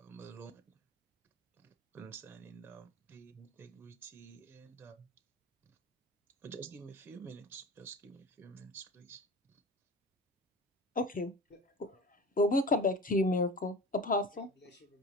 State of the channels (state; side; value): normal; both; correlation 0.36